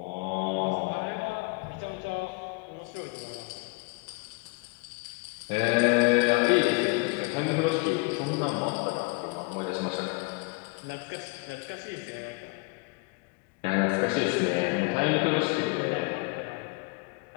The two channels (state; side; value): quieter; right; 29.1 dB